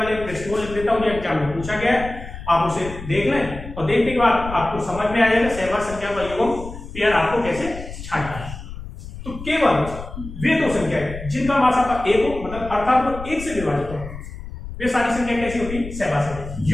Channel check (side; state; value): left; noise; rumble, 11 dB below the sound